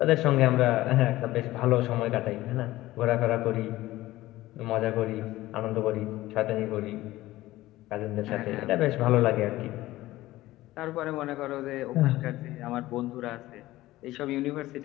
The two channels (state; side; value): quieter; right; 16.9 dB